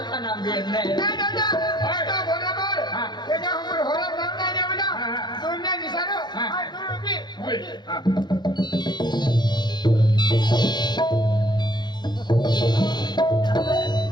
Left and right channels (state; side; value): late; right; 0.21 ms